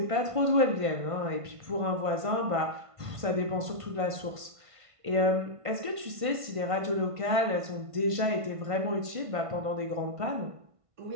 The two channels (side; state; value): left; late; 1.5 ms